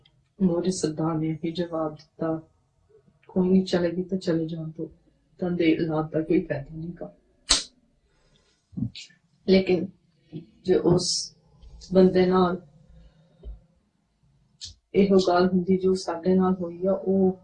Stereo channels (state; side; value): identical; both; correlation 1.00